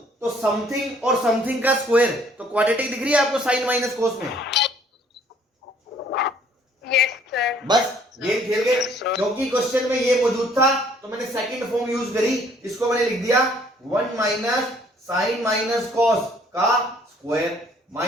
तो समथिंग और समथिंग का स्क्वायर, तो क्वाड्रेटिक दिख रही है आपको साइन माइनस कोस में? Yes sir. बस गेम खेल गए, क्योंकि क्वेश्चन में ये मौजूद था तो मैंने सेकंड फॉर्म यूज करी, इसको मैंने लिख दिया 1 माइनस साइन माइनस कॉस का square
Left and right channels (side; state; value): both; normal; correlation 0.60